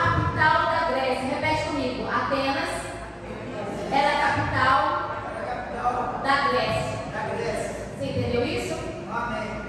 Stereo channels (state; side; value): identical; both; correlation 1.00